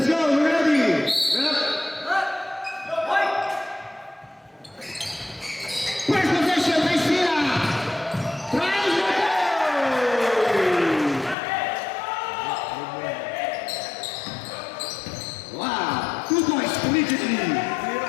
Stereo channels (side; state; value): right; drops out; at 11.4 s